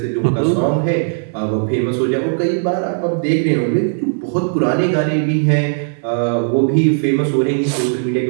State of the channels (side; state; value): left; silent; digital silence